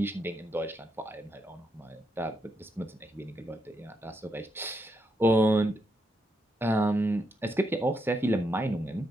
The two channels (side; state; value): both; normal; correlation 0.80